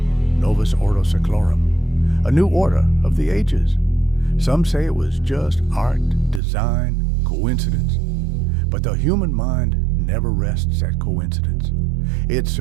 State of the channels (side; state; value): left; drops out; at 6.4 s